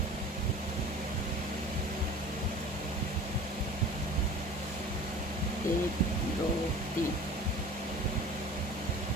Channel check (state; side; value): normal; both; correlation 0.41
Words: एक, दो, तीन।